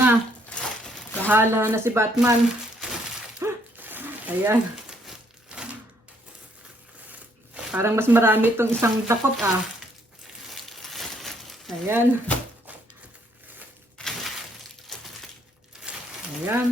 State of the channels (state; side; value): normal; both; correlation 0.69